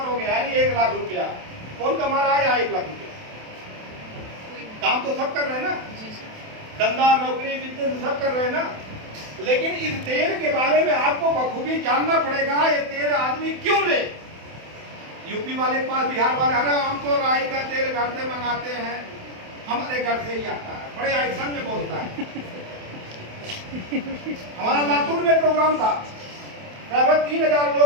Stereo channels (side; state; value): left; late; 27 ms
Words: हो गया, यानी 1 लाख रुपया। कौन कमा रहा है? 1 लाख रुपया। काम तो सब कर रहे हैं ना, धंधा, नौकरी, बिजनेस सब कर रहे हैं ना। लेकिन इस तेल के बारे में आपको बखूबी जानना पड़ेगा, ये तेल आदमी क्यों ले। यूपी वाले पास, बिहार वाले, अरे हम तो राई का तेल घर से मंगाते हैं, हमारे घर से ही आता है, बड़े एक्शन में बोलता है। हमारा लातूर में प्रोग्राम था, लगभग 3000